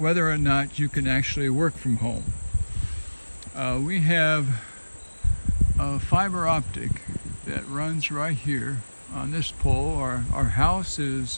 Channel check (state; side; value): inverted; both; correlation -1.00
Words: or not you can actually work from home. We have a fiber optic that runs right here on this pole. Our house